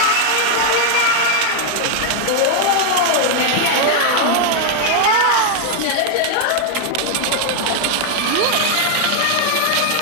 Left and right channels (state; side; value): different; both; correlation 0.00